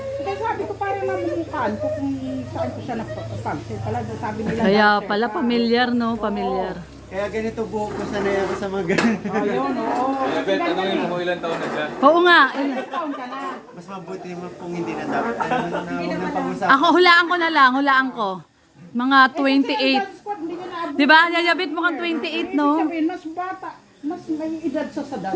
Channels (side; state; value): both; identical; correlation 1.00